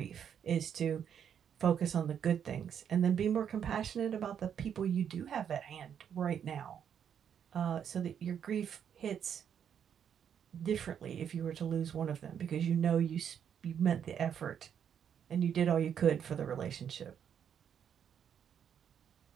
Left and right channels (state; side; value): quieter; left; 8.4 dB